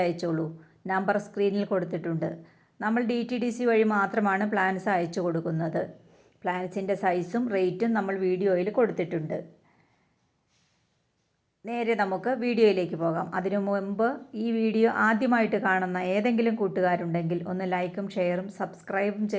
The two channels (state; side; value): identical; both; correlation 1.00